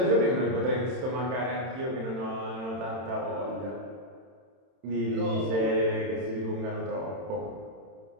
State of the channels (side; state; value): left; late; 31 ms